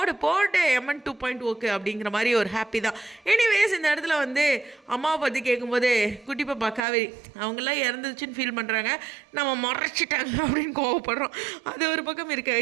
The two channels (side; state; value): left; drops out; at 6.8 s